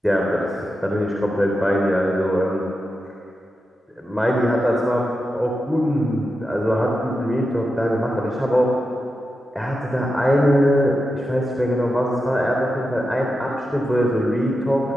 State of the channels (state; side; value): normal; both; correlation 0.89